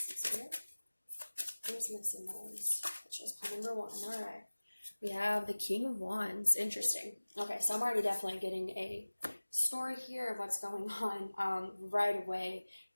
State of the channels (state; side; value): inverted; both; correlation -1.00